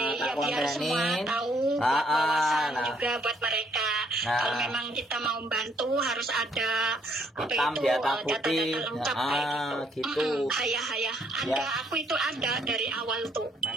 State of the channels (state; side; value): normal; both; correlation 0.68